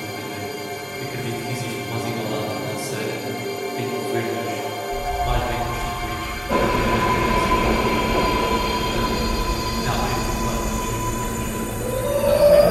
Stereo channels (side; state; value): both; identical; correlation 1.00